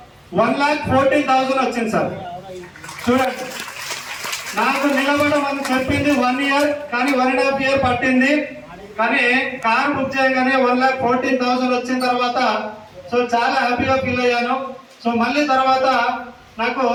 1,14,000 వచ్చింది సార్. చూడండి, నాకు నిలబడడం అని చెప్పింది 1 year, కానీ 1.5 year పట్టింది. కానీ కార్ బుక్ చేయగానే 1,14,000 వచ్చిన తర్వాత సో చాలా హ్యాపీగా ఫీల్ అయ్యాను. సో మళ్ళీ తర్వాత నాకు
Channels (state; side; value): identical; both; correlation 1.00